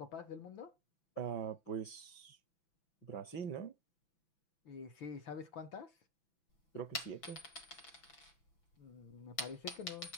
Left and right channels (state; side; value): late; right; 6.0 ms